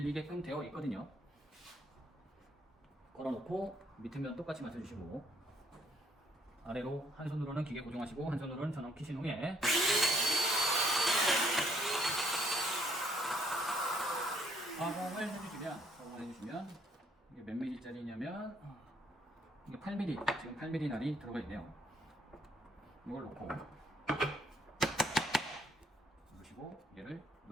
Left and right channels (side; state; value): both; normal; correlation 0.68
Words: 되어 있거든요. 걸어놓고 밑에 면 똑같이 맞춰주시고, 아래로 한 손으로는 기계 고정하시고 한 손으로는 전원 키신 후에 가공을 해주시면 이게 몇 mm짜리냐면 이게 8mm, 지금 8mm 날이 들어가 있네요. 이걸 놓고 올려주시고 얘를